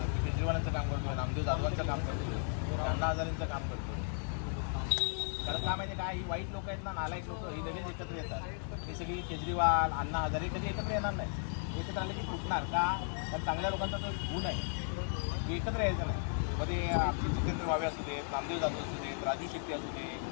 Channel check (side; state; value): right; silent; 54 dB below the other